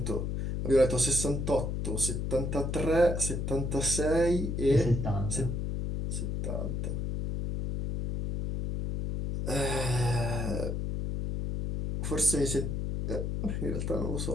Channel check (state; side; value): noise; left; hum, 2 dB below the sound